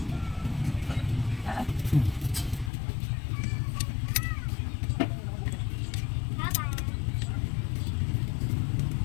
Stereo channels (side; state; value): right; drops out; at 2.7 s